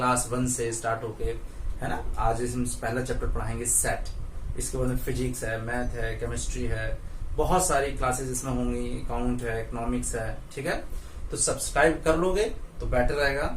1 से स्टार्ट होके, है ना, आज इसमें पहला चैप्टर पढ़ाएंगे सेट, इसके बाद में फिजिक्स है, मैथ है, केमिस्ट्री है, बहुत सारी क्लासेस इसमें होंगी, अकाउंट है, इकोनॉमिक्स है। ठीक है, तो सब्सक्राइब कर लोगे तो बेटर रहेगा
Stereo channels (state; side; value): identical; both; correlation 1.00